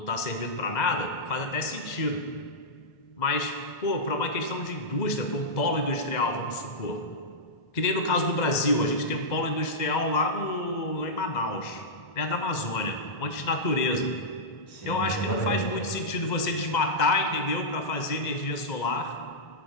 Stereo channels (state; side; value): late; right; 2.0 ms